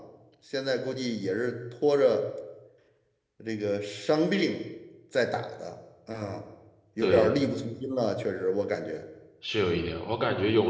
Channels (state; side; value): identical; both; correlation 1.00